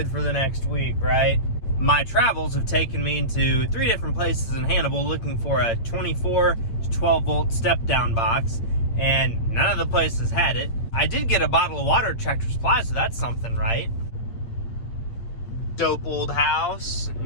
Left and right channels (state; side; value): late; right; 8.7 ms